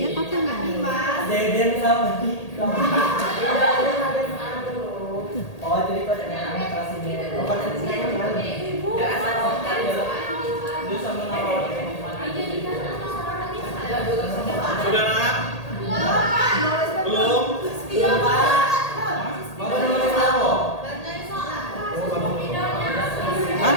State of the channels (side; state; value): right; late; 1.8 ms